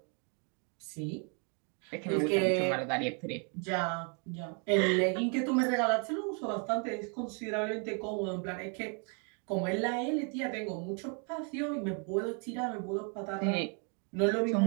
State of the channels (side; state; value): left; quieter; 38.3 dB